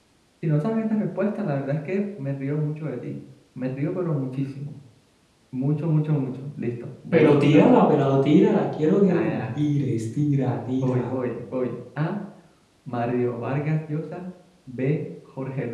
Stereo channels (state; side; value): identical; both; correlation 1.00